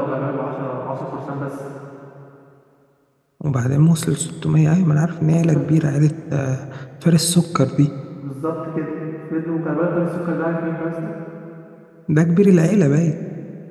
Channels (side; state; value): both; identical; correlation 1.00